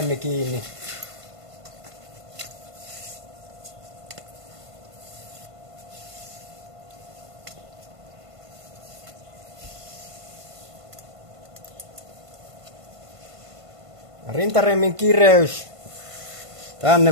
kiinni. Rintaremmin kireys, tänne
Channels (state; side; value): late; left; 1.5 ms